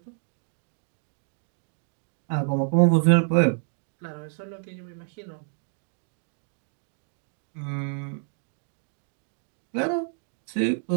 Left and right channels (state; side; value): silent; left; digital silence